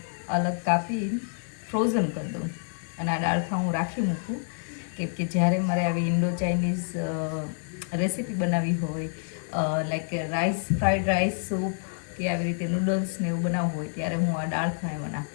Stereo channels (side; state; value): right; silent; digital silence